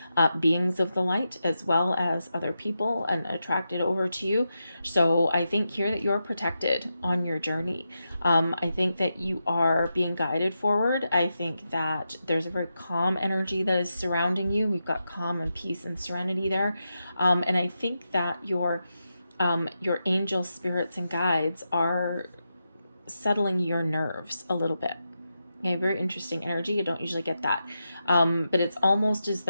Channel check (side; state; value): both; inverted; correlation -0.88